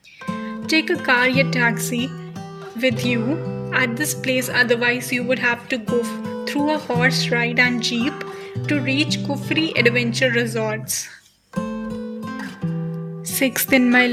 Take a car or taxi with you at this place, otherwise you would have to go through a horse ride and jeep to reach Kufri Adventure Resorts. Sixth in my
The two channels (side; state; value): both; identical; correlation 1.00